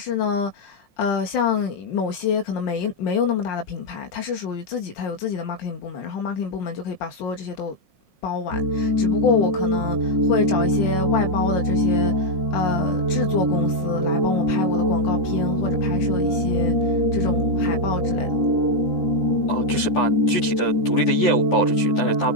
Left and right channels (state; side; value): late; right; 5.6 ms